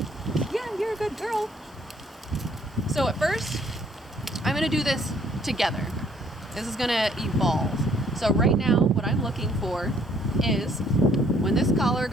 Yeah, you're a good girl. So at first, I'm going to do this together. This is going to evolve. So right now, what I'm looking for is when this collar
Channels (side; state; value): both; normal; correlation 0.62